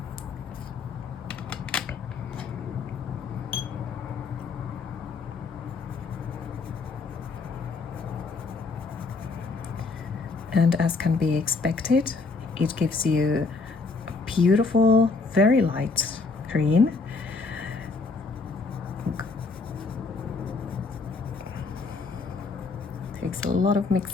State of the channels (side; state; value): right; quieter; 4.2 dB